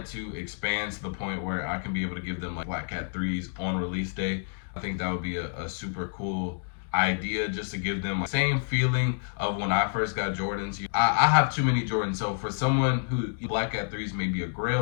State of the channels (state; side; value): silent; right; digital silence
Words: to expand to the point where I can be able to give them like Black Cat 3s on release day. I think that would be a super cool idea, just to give them the same feeling of when I first got Jordans. I have too many Jordans, so for someone who Black Cat 3s may be a